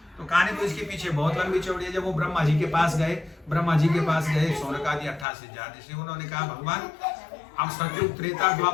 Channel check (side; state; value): right; drops out; at 5.2 s